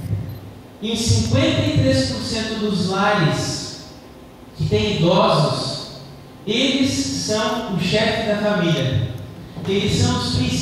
em 53% dos lares que têm idosos, eles são o chefe da família, eles são os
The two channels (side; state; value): both; identical; correlation 1.00